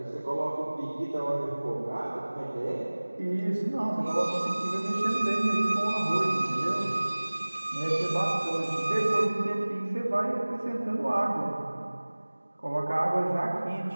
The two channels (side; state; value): both; inverted; correlation -1.00